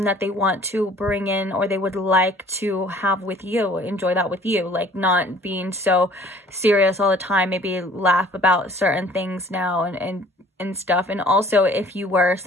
that they want to bring in, or they would like to have with you, enjoy that with you, like not being so serious all the time, maybe laugh about certain things now and stuff. And also, if you were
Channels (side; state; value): both; normal; correlation 0.53